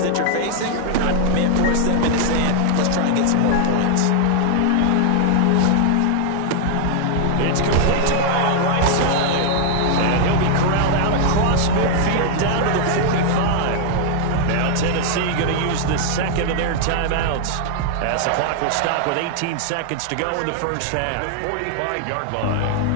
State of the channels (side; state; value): both; different; correlation 0.00